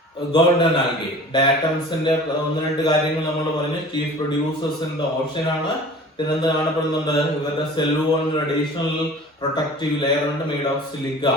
golden algae. ഡയാറ്റംസിന്റെ ഒന്ന് രണ്ട് കാര്യങ്ങൾ നമ്മൾ പറഞ്ഞു. Chief producers in the ocean ആണ്. പിന്നെന്ത് കാണപ്പെടുന്നുണ്ട്? ഇവരുടെ സെൽ വോളിന് അഡീഷണൽ പ്രൊട്ടക്റ്റീവ് ലെയർ ഉണ്ട്, മെയ്ഡ് ഓഫ് സിലിക്ക.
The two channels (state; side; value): normal; both; correlation 0.43